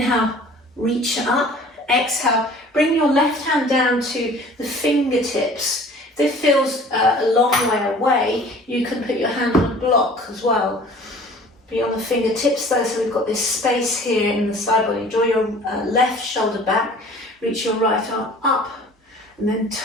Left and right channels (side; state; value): both; normal; correlation 0.48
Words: reach up. Exhale, bring your left hand down to the fingertips. If this feels a long way away, you can put your hand on a block as well. Be on the fingertips though, so we've got this space here in the side body. Draw your left shoulder back, reach your right arm up, and then